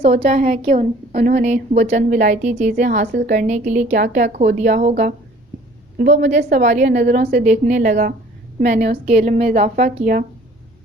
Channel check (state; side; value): normal; both; correlation 0.53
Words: ہے کہ انہوں نے وہ چند ولایتی چیزیں حاصل کرنے کے لیے کیا کیا کھو دیا ہوگا؟ وہ مجھے سوالیہ نظروں سے دیکھنے لگا۔ میں نے اس کے علم میں اضافہ کیا۔